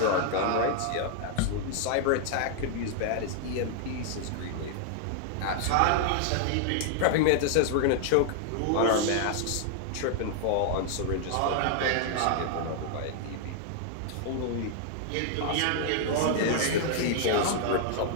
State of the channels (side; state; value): both; different; correlation -0.01